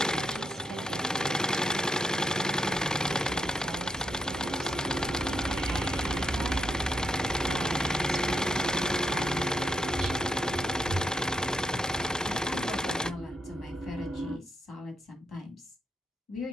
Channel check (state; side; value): normal; both; correlation 0.80